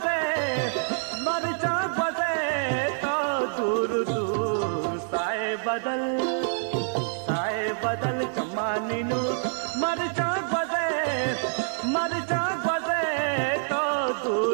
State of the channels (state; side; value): silent; left; digital silence